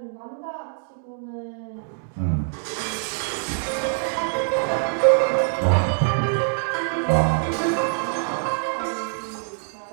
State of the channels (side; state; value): left; silent; digital silence